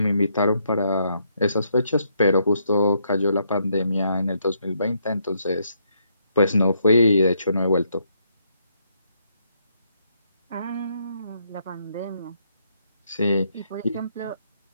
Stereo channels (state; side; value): inverted; both; correlation -0.75